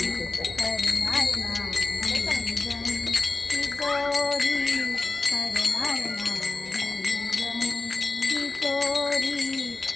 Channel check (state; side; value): quieter; right; 3.4 dB